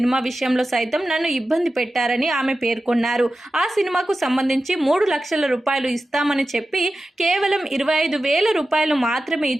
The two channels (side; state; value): both; normal; correlation 0.93